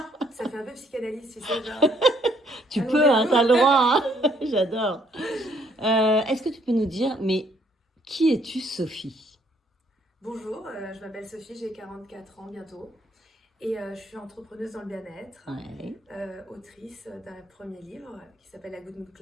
Ça fait un peu psychanalyse, tu sais, genre... Tu peux, hein, t'as le droit. Hein. J'adore. Est-ce que tu peux nous dire, mais qui es-tu, Sophie? Bonjour, je m'appelle Sophie, j'ai 44 ans bientôt. Et je suis entrepreneuse dans le bien-être, Ouais. autrice d'un premier livre qui s'appelle La Good Mood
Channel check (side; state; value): both; normal; correlation 0.66